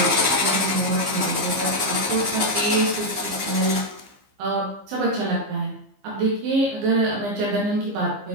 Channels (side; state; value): left; late; 15 ms